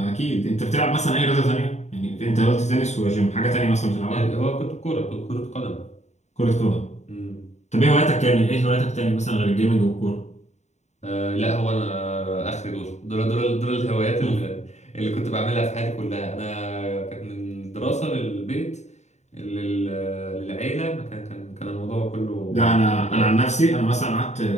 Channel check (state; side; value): late; right; 0.33 ms